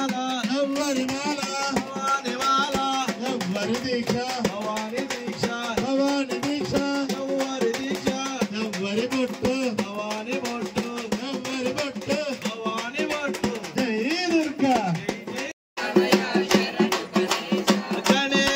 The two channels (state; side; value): identical; both; correlation 1.00